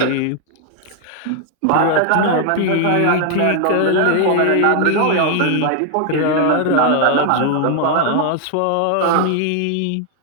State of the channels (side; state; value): both; different; correlation 0.00